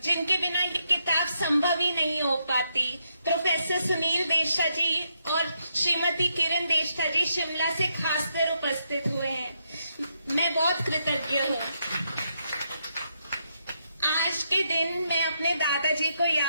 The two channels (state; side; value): inverted; both; correlation -0.79